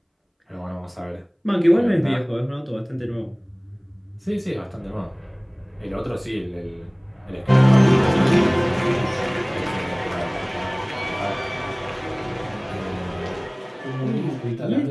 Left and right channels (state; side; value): identical; both; correlation 1.00